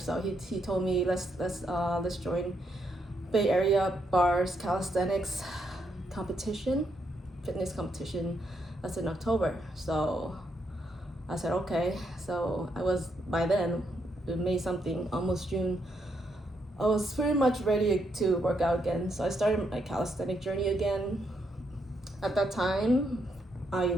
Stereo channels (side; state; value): both; normal; correlation 0.77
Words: he told me let's join Bay Area Bars Calisthenics competition, fitness competition. That's in October. So I said okay. So I was, by then, May something, almost June, I was pretty much ready to work out again. So I started my calisthenic journey again. At that time, I